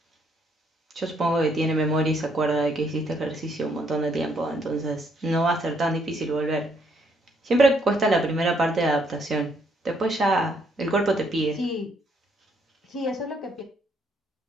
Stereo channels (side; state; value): both; normal; correlation 0.70